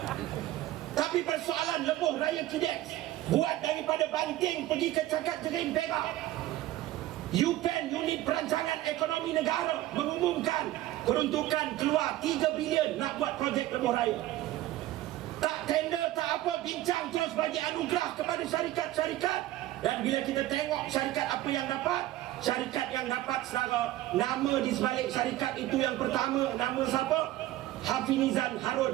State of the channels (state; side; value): quieter; left; 15.3 dB